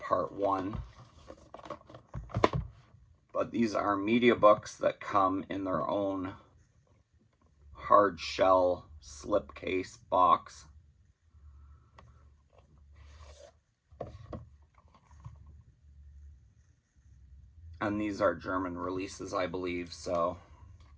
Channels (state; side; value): identical; both; correlation 1.00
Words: 1. But these are media books that come in their own hard shell slipcase box. And these are German releases, I believe, so